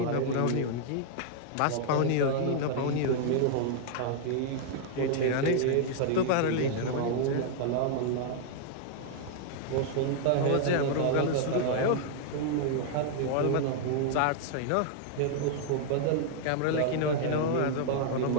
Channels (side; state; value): both; different; correlation -0.01